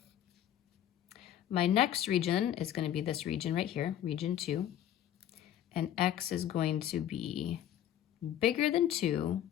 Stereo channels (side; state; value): right; quieter; 11.1 dB